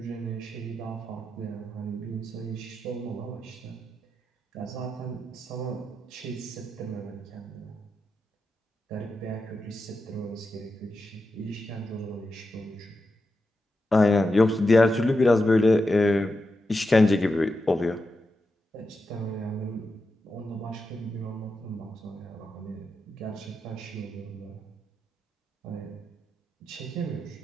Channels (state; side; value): normal; both; correlation 0.88